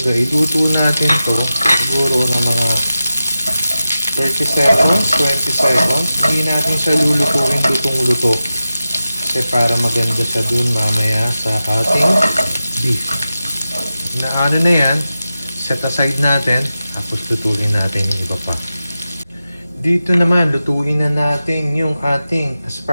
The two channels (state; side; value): inverted; both; correlation -0.93